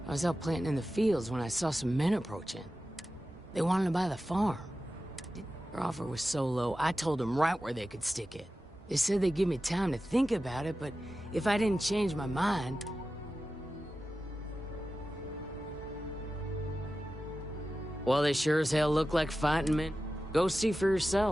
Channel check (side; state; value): both; normal; correlation 0.93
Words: I was out planting in the fields when I saw some men approaching. They wanted to buy the farm. Their offer was so low, I told them right where they could stick it. They said they'd give me time to think about it, but if I didn't change my mind... Well, they sure as hell look like fighting men. Go see for